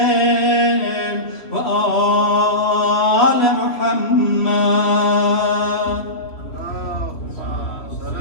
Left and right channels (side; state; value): right; late; 3.1 ms